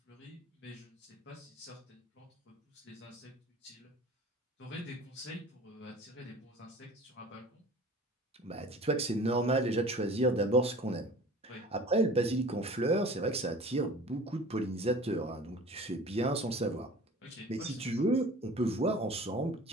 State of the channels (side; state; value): both; normal; correlation 0.43